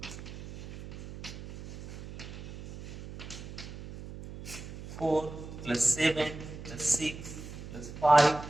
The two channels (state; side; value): noise; right; hum, 12 dB below the sound